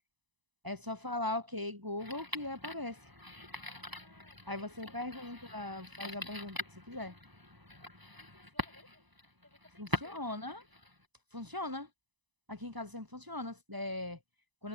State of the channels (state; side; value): late; left; 1.0 ms